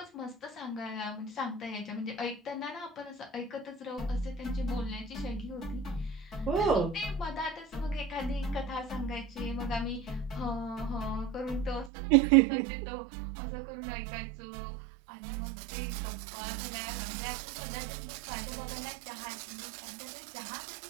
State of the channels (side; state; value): left; drops out; at 11.9 s